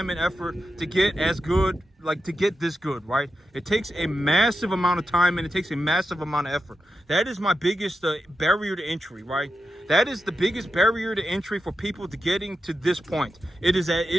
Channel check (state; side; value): normal; both; correlation 0.89